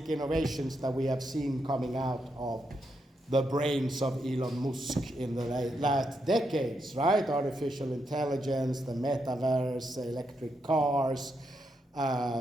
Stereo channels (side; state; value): both; normal; correlation 0.82